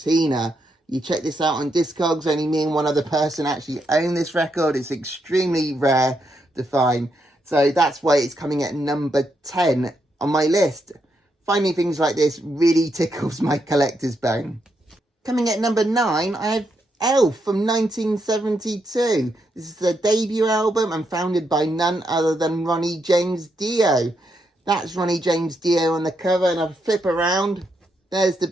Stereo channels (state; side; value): normal; both; correlation 0.80